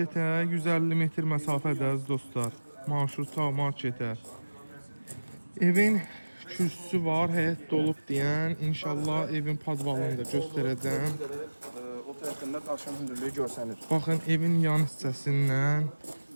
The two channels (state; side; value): inverted; both; correlation -1.00